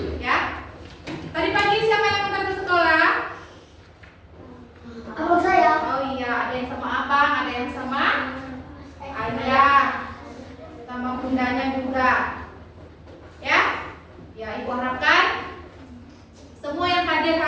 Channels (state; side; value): identical; both; correlation 1.00